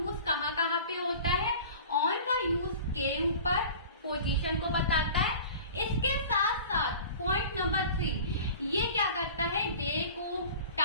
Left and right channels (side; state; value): both; inverted; correlation -0.40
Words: कहाँ कहाँ पे होता है, ऑन का यूज के ऊपर पोजीशन को बताता है। इसके साथ साथ पॉइंट नंबर 3, ये क्या करता है, डेट